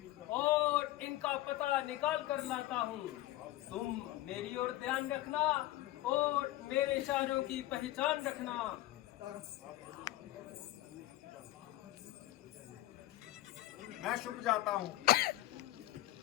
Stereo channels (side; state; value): right; quieter; 16.3 dB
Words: और इनका पता निकाल कर लाता हूँ। तुम मेरी ओर ध्यान रखना और मेरे इशारों की पहचान रखना। मैं छुप जाता हूँ।